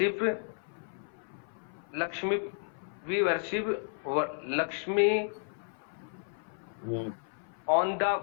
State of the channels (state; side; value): silent; right; 56 dB below the other